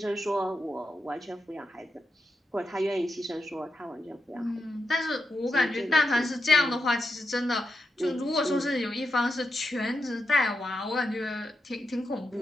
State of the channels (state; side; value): normal; both; correlation 0.87